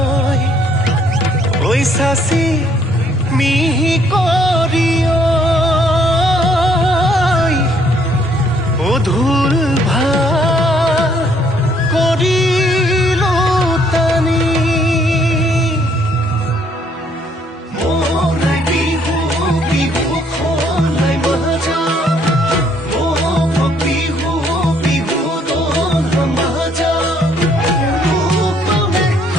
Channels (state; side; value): normal; both; correlation 0.66